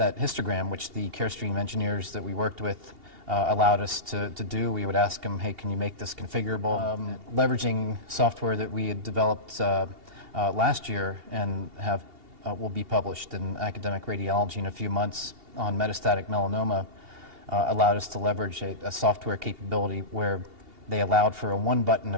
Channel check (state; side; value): late; left; 2.8 ms